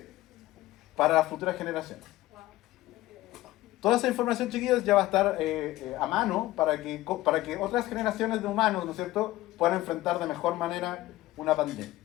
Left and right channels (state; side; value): quieter; right; 16.8 dB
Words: para las futuras generaciones. Toda esa información, chiquillos, ya va a estar a mano para que otras generaciones de humanos, ¿no es cierto?, puedan enfrentar de mejor manera una pandemia.